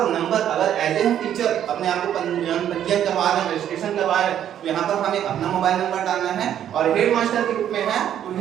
नंबर अगर एज ए हम टीचर अपने आप को पंजीयन करवा रहे हैं, रजिस्ट्रेशन करवा रहे हैं तो यहाँ पर हमें अपना मोबाइल नंबर डालना है, और हेडमास्टर के रूप में है तो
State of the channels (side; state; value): left; quieter; 10.3 dB